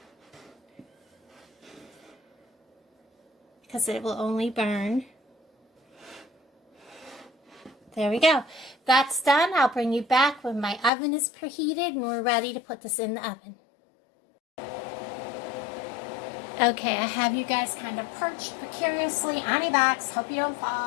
Because it will only burn. There we go. That's done. I'll bring you back when my oven is preheated and we're ready to put this in the oven. Okay, I have you guys kind of perched precariously on your backs. Hope you don't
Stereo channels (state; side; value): drops out; right; at 10.9 s